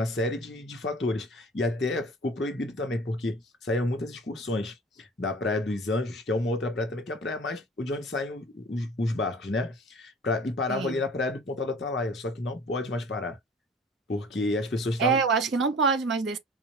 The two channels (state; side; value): normal; both; correlation 0.45